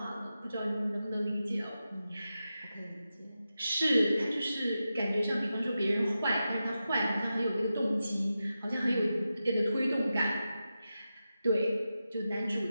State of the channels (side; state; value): both; inverted; correlation -0.91